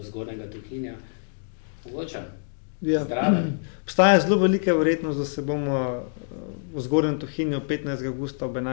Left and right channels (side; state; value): right; silent; digital silence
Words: Zgornjega Tuhinja. Mogoče? Ja. Zdraven. Obstaja zelo velika verjetnost, da se bomo v Zgornjem Tuhinju 15. avgusta ob